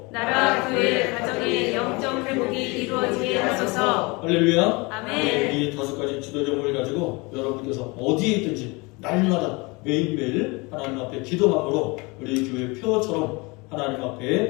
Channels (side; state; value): right; quieter; 26.4 dB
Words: 나라, 교회, 가정의 영적 회복이 이루어지게 하소서. 할렐루야. 아멘. 이 5가지 기도 제목을 가지고 여러분께서 어디에 있든지 날마다 매일매일 하나님 앞에 기도함으로 우리 교회 표처럼 하나님